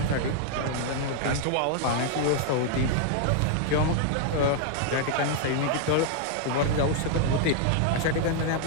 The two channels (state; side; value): different; both; correlation 0.00